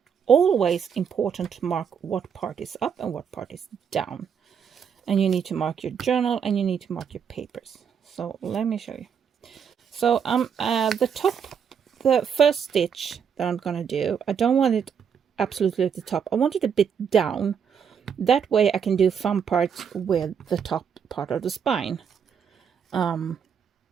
important to mark what part is up and what part is down. And you need to mark your journal and you need to mark your papers. So let me show you. So the first stitch that I'm going to do, I don't want it absolutely at the top. I want it a bit down. That way I can do fun parts with the top part of the spine. Kind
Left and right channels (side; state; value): left; quieter; 7.3 dB